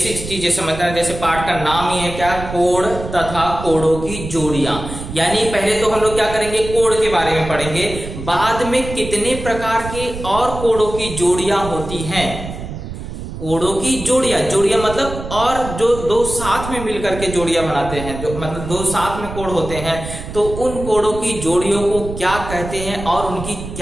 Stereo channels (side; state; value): right; noise; rumble, 9 dB below the sound